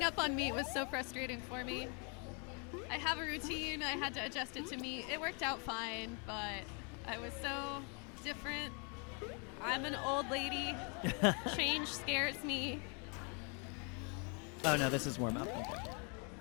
up on meat was so frustrating for me. I have a routine. I had to adjust it to meat. It worked out fine, but I was so different. I'm an old lady. Change scares me. Oh no, this is warm up. Okay.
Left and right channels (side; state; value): right; quieter; 36.5 dB